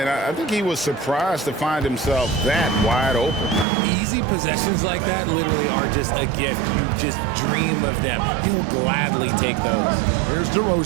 I think he was surprised to find himself that wide open. Easy possessions like that literally are just a gift. You just dream of them. He'll gladly take those. Here's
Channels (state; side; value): drops out; left; at 3.7 s